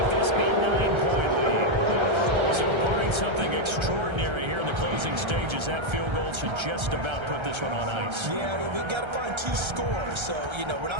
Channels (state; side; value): late; left; 1.3 ms